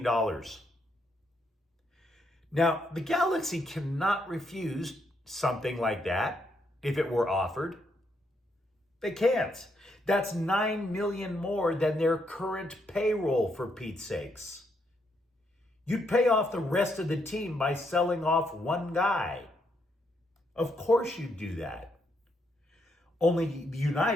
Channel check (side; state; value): both; normal; correlation 0.76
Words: Now, the Galaxy cannot refuse something like that if it were offered. They can't. That's $9 million more than their current payroll, for Pete's sakes. You'd pay off the rest of the team by selling off one guy. Of course you'd do that. Only